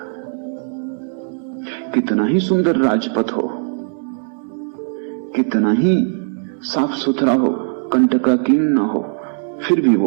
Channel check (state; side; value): silent; left; 66 dB below the other